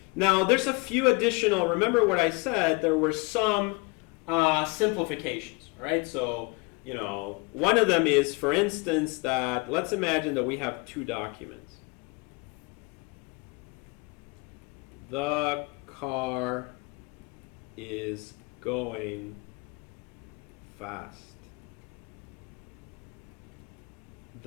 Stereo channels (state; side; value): quieter; right; 28.3 dB